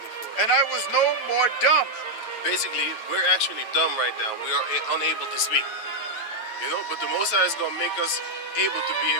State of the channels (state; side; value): late; right; 9.2 ms